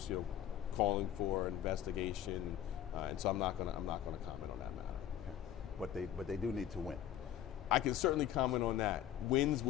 calling for investigation, and so I'm not going to comment on that matter. Okay. But they do need to win. I can certainly comment on that. Wins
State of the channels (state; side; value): quieter; right; 11.2 dB